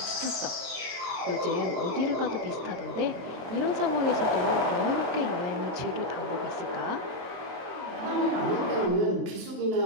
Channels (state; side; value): late; left; 23 ms